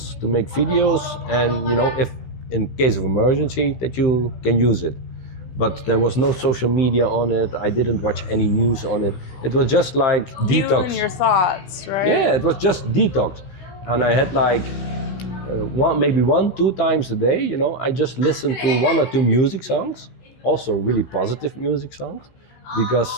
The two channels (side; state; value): right; late; 16 ms